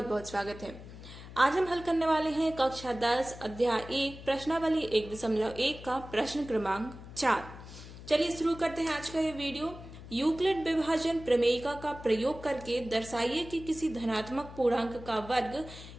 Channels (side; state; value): left; noise; hum, 15 dB below the sound